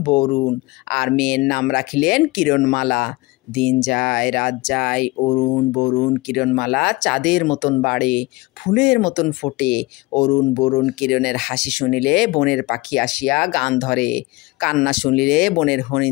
বরুণ, আর মেয়ের নাম রাখিলেন কিরণমালা। দিন যায় রাত যায়, অরুণ বরুণ কিরণমালা চাঁদের মতন বাড়ে, ফুলের মতন ফোটে। অরুণ বরুণ কিরণের হাসি শুনিলে বনের পাখি আসিয়া গান ধরে, কান্না শুনিলে বনের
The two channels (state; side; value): quieter; right; 22.4 dB